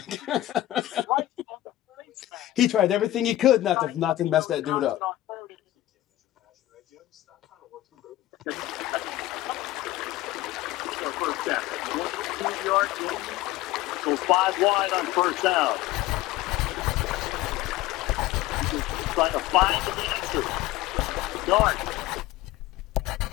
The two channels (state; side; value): quieter; right; 15.6 dB